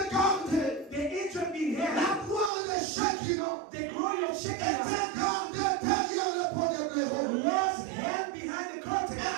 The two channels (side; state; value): left; drops out; at 2.5 s